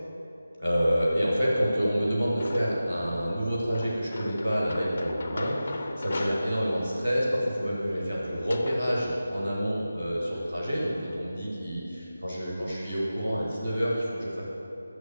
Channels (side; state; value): both; inverted; correlation -0.94